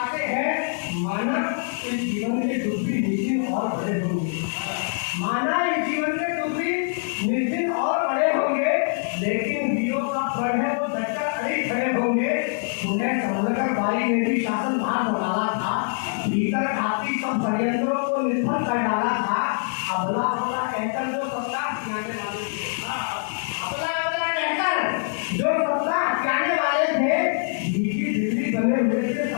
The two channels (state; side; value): silent; right; 60 dB below the other